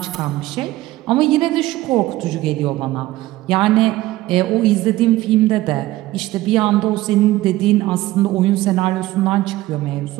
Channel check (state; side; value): quieter; left; 16.7 dB